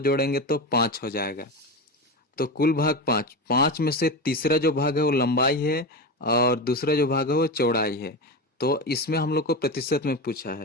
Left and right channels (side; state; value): both; normal; correlation 0.20